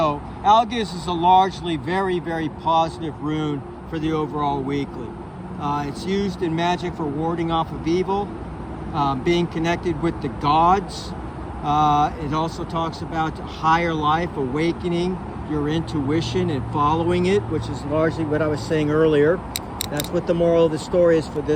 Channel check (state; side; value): identical; both; correlation 1.00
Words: Algis is a largely very, very positive rune for the overall weekly. It's used in magic for warding off of evil, being connected with the gods. It also talks about higher life, awakening your intuition and following it, which is largely what I was saying earlier. That's what the moral of the story is for